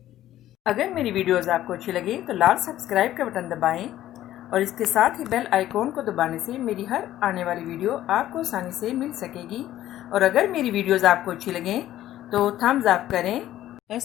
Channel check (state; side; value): quieter; right; 13.4 dB